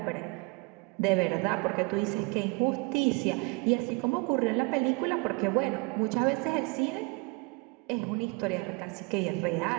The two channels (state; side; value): quieter; left; 29.5 dB